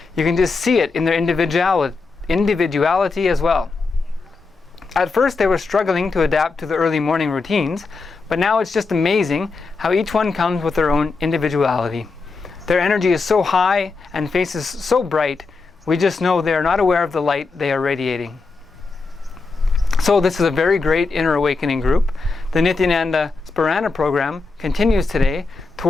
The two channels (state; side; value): quieter; right; 4.1 dB